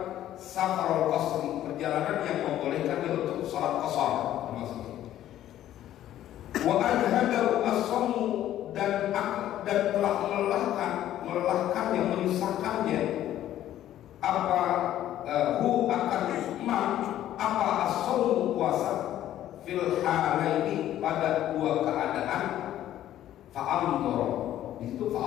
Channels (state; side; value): quieter; right; 12.4 dB